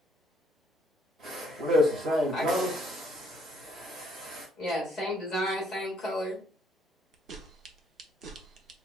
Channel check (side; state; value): both; normal; correlation 0.68